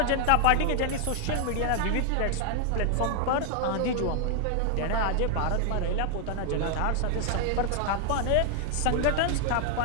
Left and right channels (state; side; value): different; both; correlation 0.00